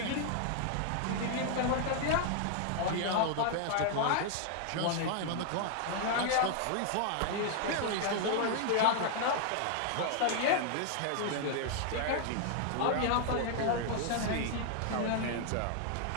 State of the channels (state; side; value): different; both; correlation 0.00